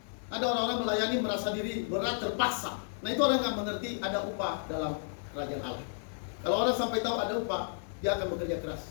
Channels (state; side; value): silent; right; digital silence